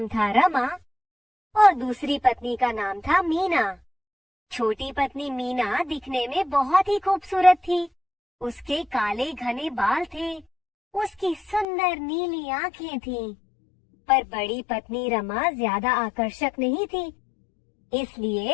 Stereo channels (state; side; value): drops out; right; at 11.7 s